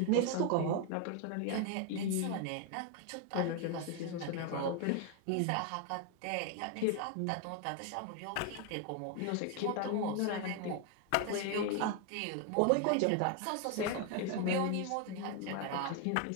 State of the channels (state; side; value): different; both; correlation 0.01